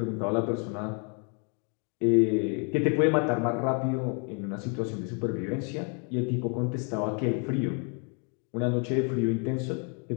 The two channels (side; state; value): right; quieter; 38.1 dB